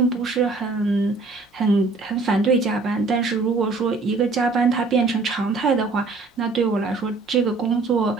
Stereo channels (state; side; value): quieter; left; 3.8 dB